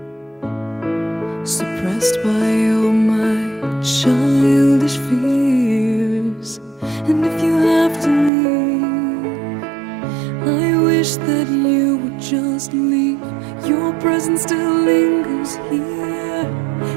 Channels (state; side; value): drops out; left; at 8.3 s